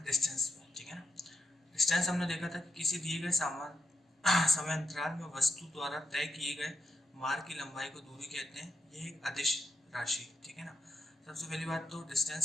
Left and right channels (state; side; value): normal; both; correlation 0.86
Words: डिस्टेंस पे, ठीक है ना। डिस्टेंस हमने देखा था कि किसी दिए गए सामान समय अंतराल में वस्तु द्वारा तय किए गए मार्ग की लंबाई को दूरी कहते हैं। ये एक अदिश राशि, ठीक है ना। सबसे पहली बात तो